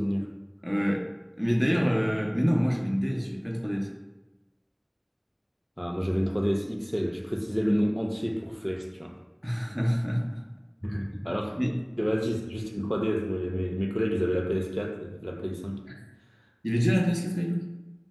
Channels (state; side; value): identical; both; correlation 1.00